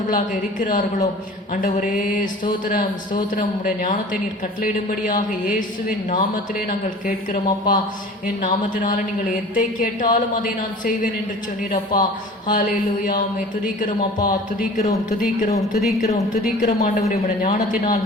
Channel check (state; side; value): normal; both; correlation 0.43